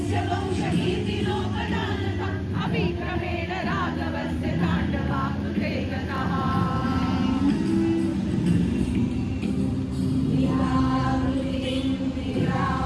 वंशकीर्तिलोकनानका अभिक्रमेण राघवस्य ताण्डवाकृते गतः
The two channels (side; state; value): both; identical; correlation 1.00